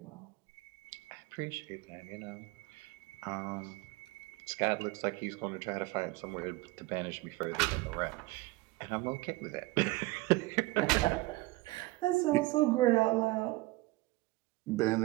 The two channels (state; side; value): quieter; left; 21.1 dB